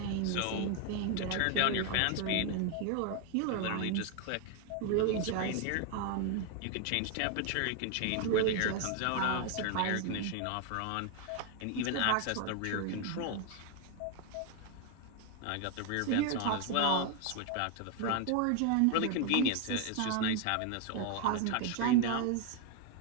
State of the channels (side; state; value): both; different; correlation 0.01